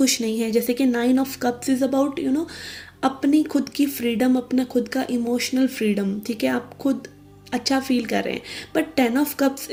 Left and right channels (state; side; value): identical; both; correlation 1.00